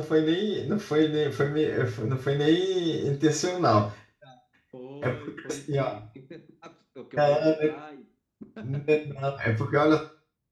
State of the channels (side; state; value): both; identical; correlation 1.00